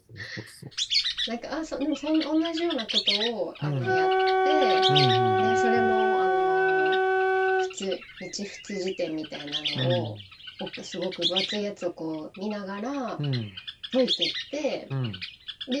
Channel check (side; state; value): both; identical; correlation 1.00